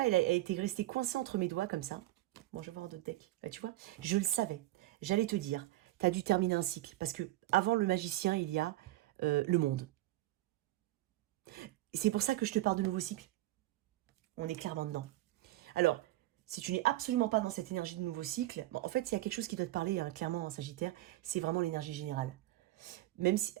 elle a été restée coincée entre mes doigts comme ça. Bon, je vais voir un autre deck. Bah, tu vois, je le savais. J'allais te dire, tu as dû terminer un cycle. Parce que avant le magicien, il y a le monde. C'est pour ça que je te parle de nouveau cycle. On est clairement dedans. Alors, si tu n'es absolument pas dans cette énergie de nouveau cycle, bon, en fait, il y a quelque chose qui doit te parler, hein, clairement en Sagittaire, c'est vraiment l'énergie générale. Même si,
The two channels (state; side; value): quieter; left; 16.7 dB